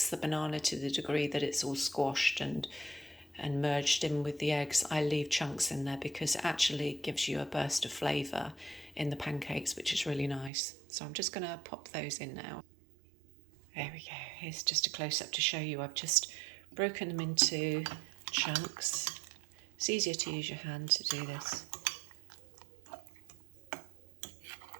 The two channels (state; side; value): drops out; left; at 10.5 s